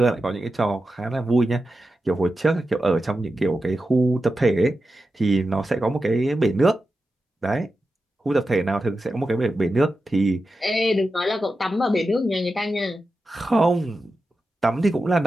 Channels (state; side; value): normal; both; correlation 0.91